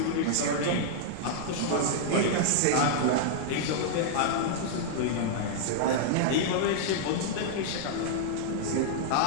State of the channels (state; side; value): different; both; correlation -0.01